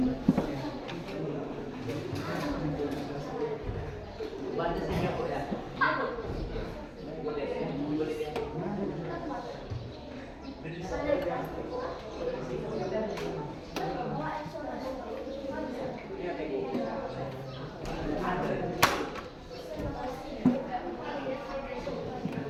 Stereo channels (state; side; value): identical; both; correlation 1.00